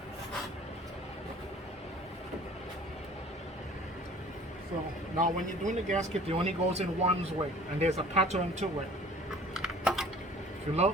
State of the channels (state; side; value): normal; both; correlation 0.48